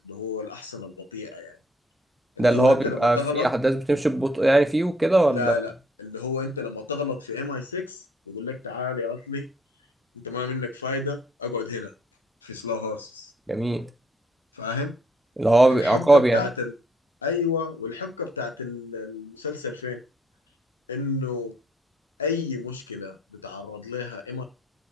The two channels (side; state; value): both; normal; correlation 0.69